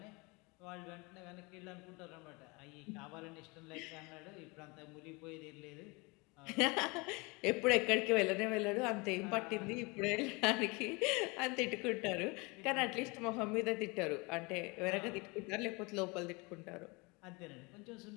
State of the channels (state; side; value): quieter; right; 27.2 dB